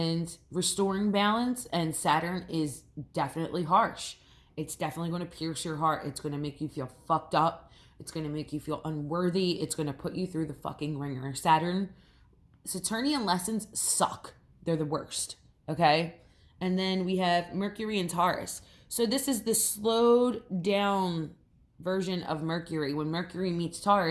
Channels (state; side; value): identical; both; correlation 1.00